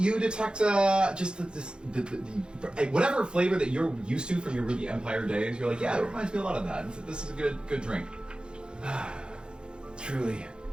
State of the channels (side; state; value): left; late; 0.050 ms